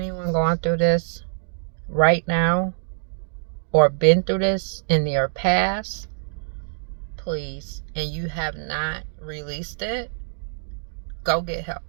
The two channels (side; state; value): left; silent; digital silence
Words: going through this right now or been through this in your past, please, and you have not released it, go get help.